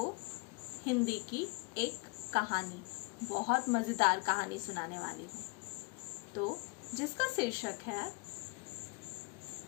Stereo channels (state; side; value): quieter; right; 29.7 dB